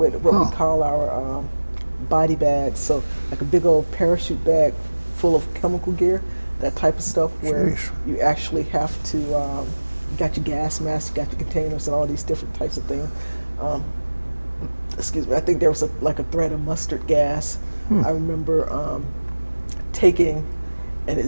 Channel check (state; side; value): inverted; both; correlation -1.00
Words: what we call our body bags, so like a big old parachute bag full of chemical gear, that type of stuff, where you actually have to, you got your gas mask, you got your containers, and all these different types of things. Excuse me, I think there was like a threat of mustard gas. I remember taking an